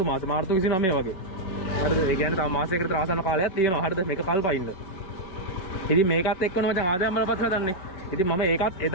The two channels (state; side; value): late; right; 5.4 ms